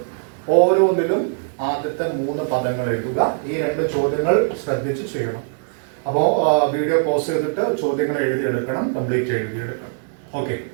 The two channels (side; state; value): left; silent; digital silence